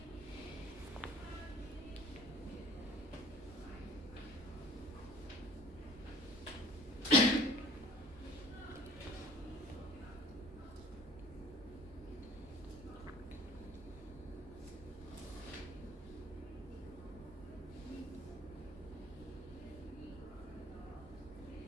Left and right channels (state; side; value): noise; right; rumble, 15 dB below the sound